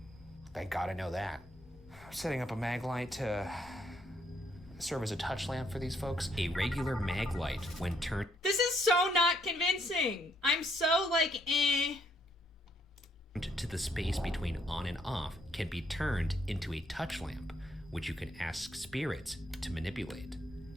Thank God I know that. Setting up a mag light to serve as a touch lamp for these folks. A regular mag light, when turned This is so not convincing. I'm so like, to the space between on and off can be turned into a touch lamp, which you can ask spirits to manipulate.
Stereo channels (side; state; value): both; normal; correlation 0.71